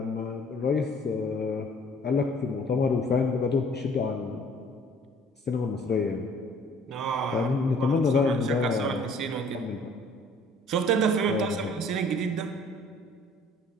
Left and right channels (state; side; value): normal; both; correlation 0.55